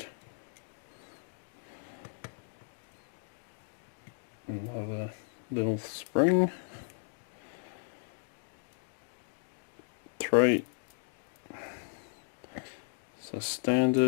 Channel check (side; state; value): right; silent; digital silence